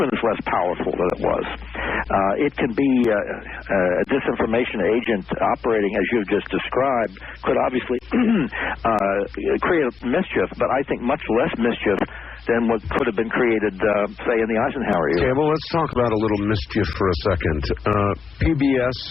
is less powerful than it was. It can be a disinformation agent operating as you've just described, could obviously create mischief, but I think much less mischief than what could have been created, say, in the Eisenhower era. Okay, well, let's talk about a little mischief for a second. PBS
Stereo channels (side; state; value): right; quieter; 5.7 dB